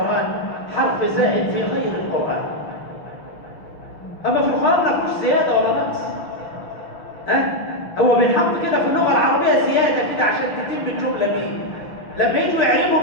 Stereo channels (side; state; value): right; late; 6.2 ms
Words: حرف زائد في غير القرآن. أما في القرآن ما فيهوش زيادة ولا نقص. هو بينحط كده في اللغة العربية زيادة كده عشان تتم الجملة بيه. لما يجوا يعربوا